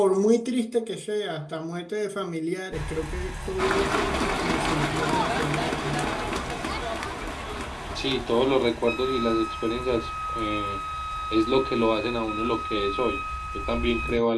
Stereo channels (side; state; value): both; identical; correlation 1.00